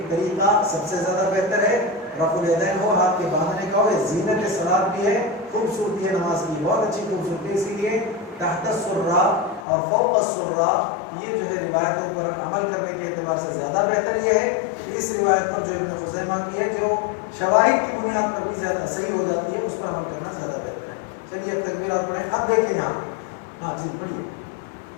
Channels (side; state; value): right; drops out; at 9.7 s